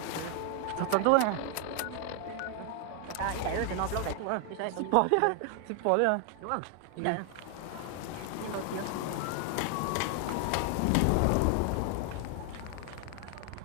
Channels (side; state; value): both; different; correlation 0.00